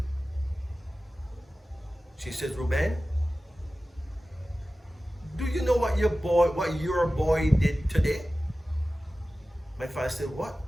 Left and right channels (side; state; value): both; normal; correlation 0.95